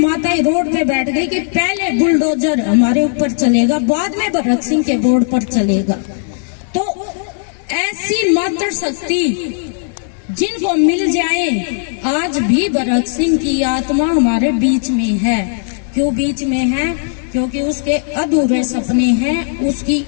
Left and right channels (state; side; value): silent; right; 61 dB below the other